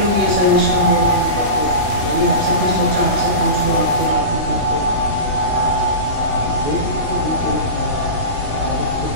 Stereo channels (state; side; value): late; left; 3.1 ms